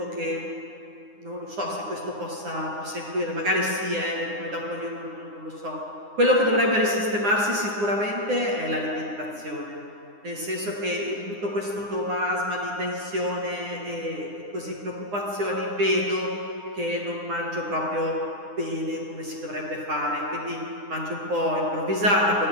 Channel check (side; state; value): left; late; 9.8 ms